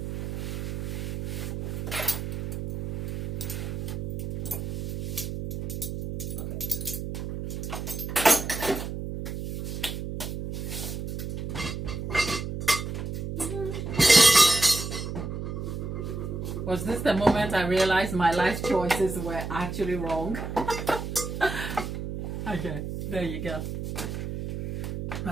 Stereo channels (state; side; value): noise; right; hum, 4 dB below the sound